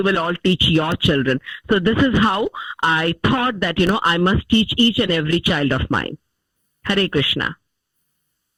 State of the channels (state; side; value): identical; both; correlation 1.00